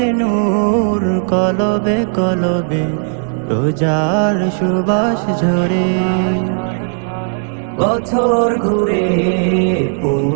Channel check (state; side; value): silent; left; digital silence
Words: নূর কলবে কলবে রোজার সুবাস ঝরে। বছর ঘুরে